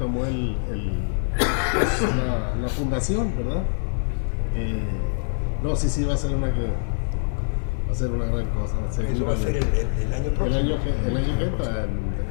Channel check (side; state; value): right; silent; 62 dB below the other